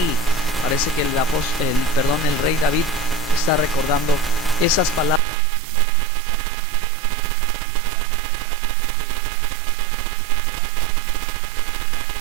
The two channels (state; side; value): drops out; left; at 5.2 s